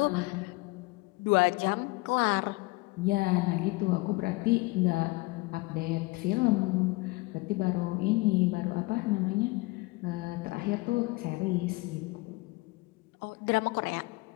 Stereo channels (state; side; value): quieter; right; 23.8 dB